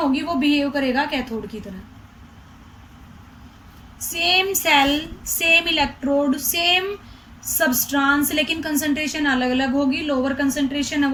वो बिहेव करेगा कैथोड की तरह। Same cell, same electrode, same substance, लेकिन कंसंट्रेशन अलग अलग होगी। लोअर कंसंट्रेशन है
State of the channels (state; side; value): identical; both; correlation 1.00